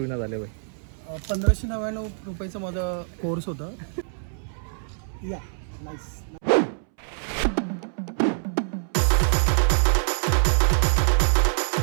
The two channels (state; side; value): silent; left; 62 dB below the other